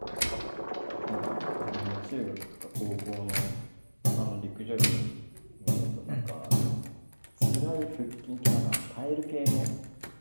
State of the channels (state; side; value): inverted; both; correlation -1.00